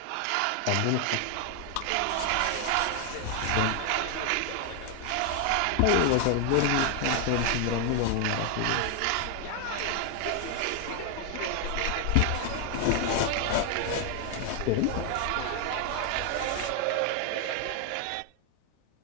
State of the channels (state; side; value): different; both; correlation 0.01